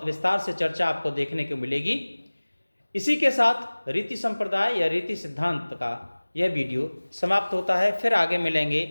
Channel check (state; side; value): inverted; both; correlation -1.00